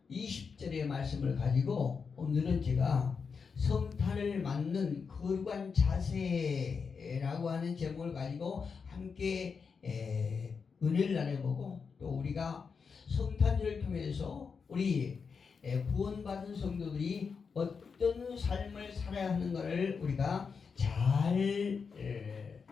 20절의 말씀을 가지고 오늘은 제가 성탄을 맞는 거룩한 자세라고 하는 제목을 가지고 함께 은혜를 나눠보고, 또 우리가 성탄절을 통해서 우리 구원받은 성도들이 어떤 삶을 살아야 하는가를 우리가 잘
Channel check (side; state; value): right; quieter; 5.6 dB